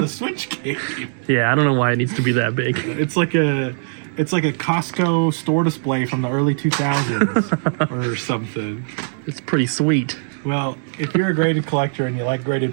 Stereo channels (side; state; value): left; silent; digital silence